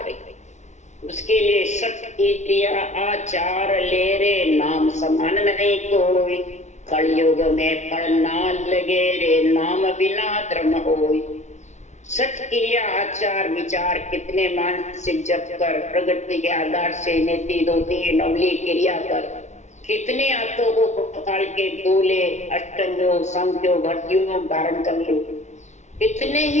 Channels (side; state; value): right; late; 0.33 ms